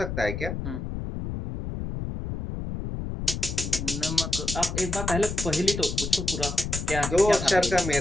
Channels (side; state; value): left; noise; rumble, 5 dB below the sound